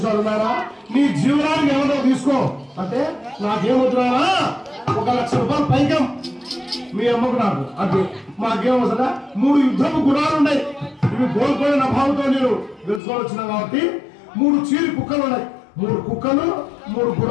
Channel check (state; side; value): drops out; right; at 13.0 s